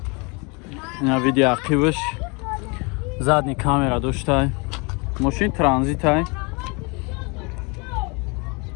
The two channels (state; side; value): quieter; right; 30.0 dB